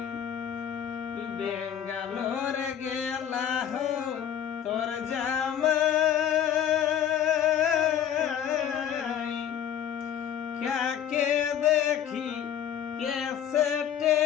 বেঙ্গালোর গেলা হো তোর জামাই কাকে দেখি কেসেটে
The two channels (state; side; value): quieter; right; 9.5 dB